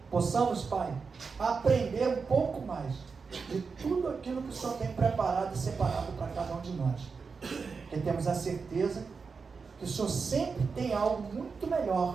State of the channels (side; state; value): left; quieter; 5.1 dB